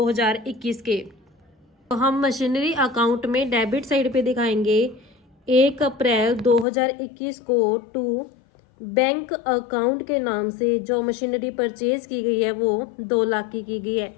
के। तो हम मशीनरी अकाउंट में डेबिट साइड पे दिखाएंगे 1 अप्रैल 2021 को टू बैंक अकाउंट के नाम से जो मशीनरी परचेज की गई है वो 2 लाख की गई है।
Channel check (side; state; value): right; drops out; at 6.7 s